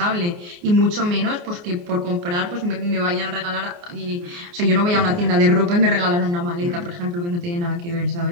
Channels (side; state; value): left; late; 29 ms